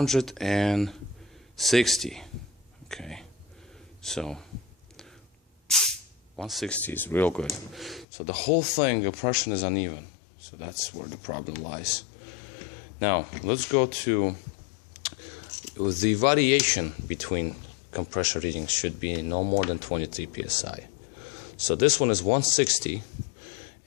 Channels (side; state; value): right; drops out; at 8.1 s